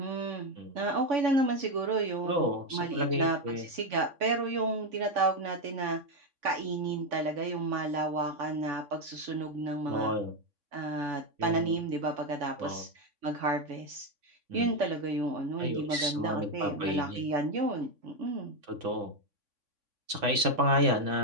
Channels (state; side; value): late; left; 3.5 ms